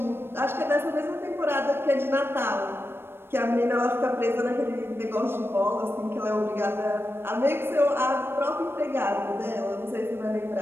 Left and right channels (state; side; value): late; left; 0.11 ms